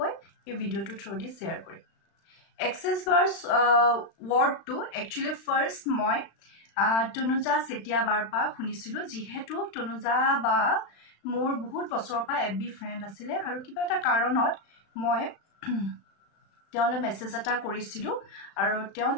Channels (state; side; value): late; right; 35 ms